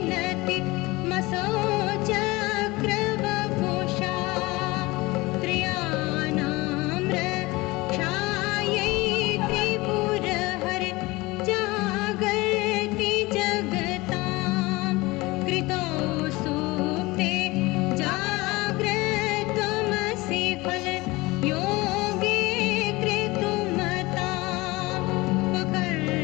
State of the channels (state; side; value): quieter; right; 21.8 dB